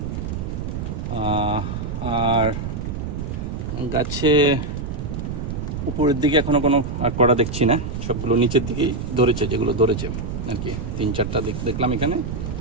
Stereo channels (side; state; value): right; noise; rumble, 4 dB below the sound